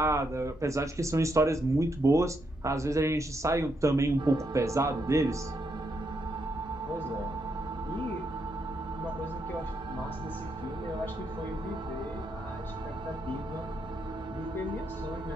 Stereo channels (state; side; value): normal; both; correlation 0.79